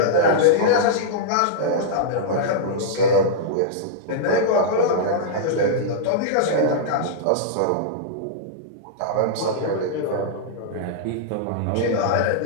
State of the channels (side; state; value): both; different; correlation -0.02